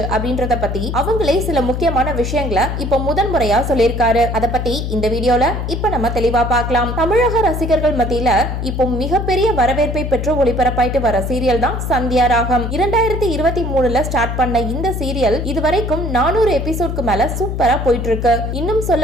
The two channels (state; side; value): noise; left; hum, 3 dB below the sound